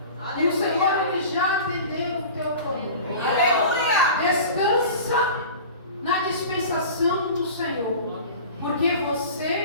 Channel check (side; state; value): both; inverted; correlation -0.37